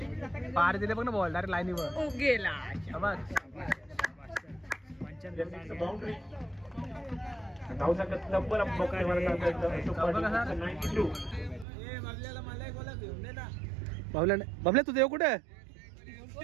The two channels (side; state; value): left; drops out; at 11.7 s